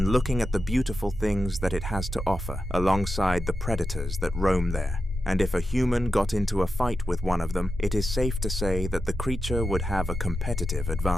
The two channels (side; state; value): both; normal; correlation 0.90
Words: looking at the beautiful things that it has to offer alongside the predators that roam there. And if a human got into a fight with one of them, it is safe to say that the creature would have a competitive